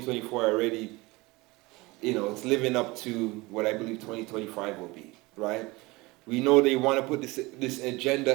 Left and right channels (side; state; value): left; quieter; 22.8 dB